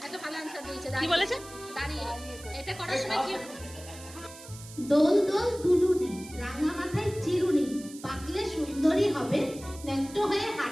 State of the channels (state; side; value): noise; right; hiss, 17 dB below the sound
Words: একটা ভালো আনসার দিয়েছে। কি বলেছে? দাঁড়িয়ে। এটা করার সময় কি? দোল দোল দুলুনি, রাঙা মাথায় চিরুনি, পাকলে সুন্দরী হবে, ন্যাংটো হয়ে